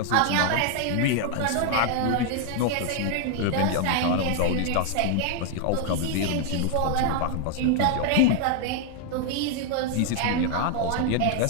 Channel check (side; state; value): both; different; correlation 0.00